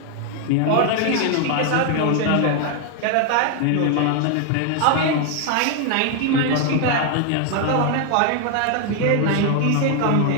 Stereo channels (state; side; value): different; both; correlation 0.00